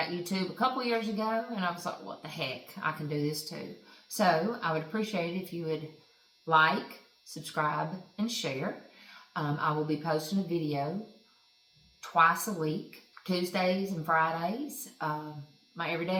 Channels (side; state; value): both; identical; correlation 1.00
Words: YouTube a couple years ago, and I was like, what the heck, I can do this too. So I would appreciate it if you would like, subscribe, and share. I will be posting a video twice a week, Tuesdays and Fridays, my